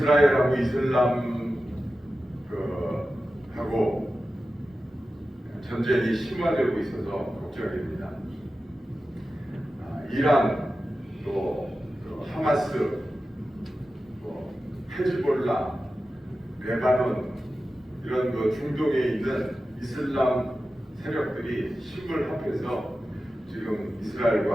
이스라엘하고 이슬람 하고 전쟁이 심화되고 있어서 걱정입니다. 이란, 또 하마스, 또 헤즈볼라, 레바논 이런 중동에 있는 이슬람 세력들이 힘을 합해서 지금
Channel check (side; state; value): both; normal; correlation 0.93